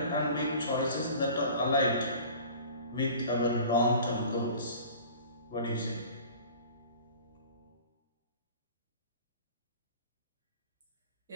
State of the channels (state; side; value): inverted; both; correlation -0.43